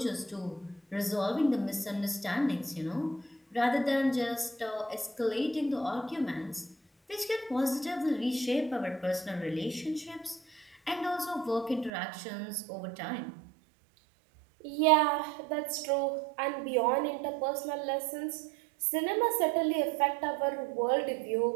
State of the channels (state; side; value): drops out; left; at 11.9 s